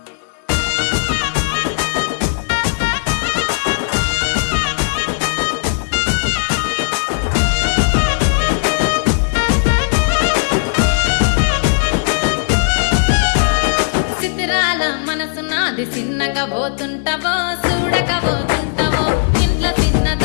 సిద్ధరాల మనసు నాది చిన్నగా పోతుంటావో చూడక పోతుంటావో ఇంట్లో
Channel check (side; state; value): right; silent; digital silence